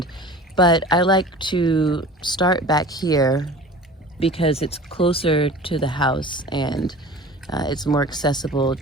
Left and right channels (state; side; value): normal; both; correlation 0.40